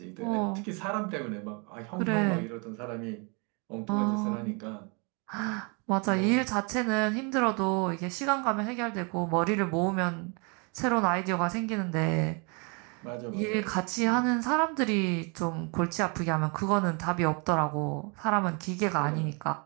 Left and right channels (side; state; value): left; quieter; 33.4 dB